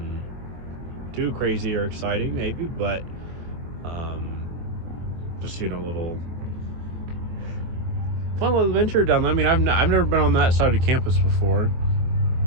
too crazy or exciting, maybe, but just a little fun little adventure down there. I mean, I've never been on that side of campus before.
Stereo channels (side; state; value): left; late; 24 ms